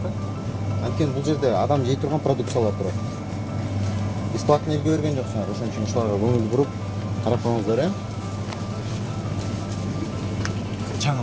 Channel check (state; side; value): identical; both; correlation 1.00